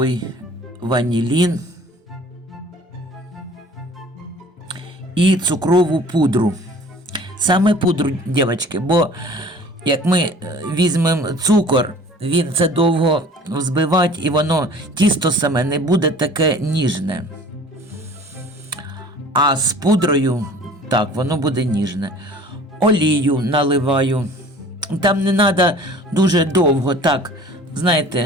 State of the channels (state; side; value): normal; both; correlation 0.47